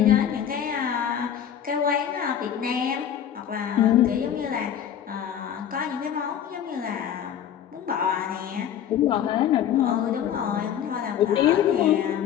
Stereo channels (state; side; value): quieter; right; 9.5 dB